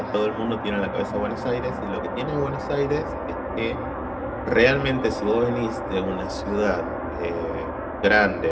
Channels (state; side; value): identical; both; correlation 1.00